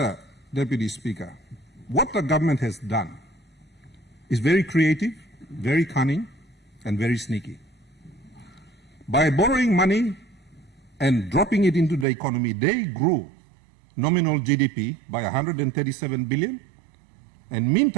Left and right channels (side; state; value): left; drops out; at 12.1 s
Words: Deputy Speaker, what the government has done is very creative, very cunning, and very sneaky. By borrowing money and dropping it into the economy, they grew nominal GDP by 137 billion, and